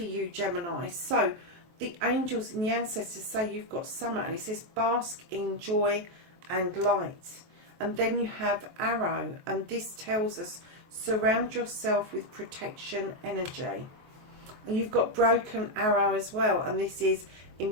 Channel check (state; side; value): late; left; 23 ms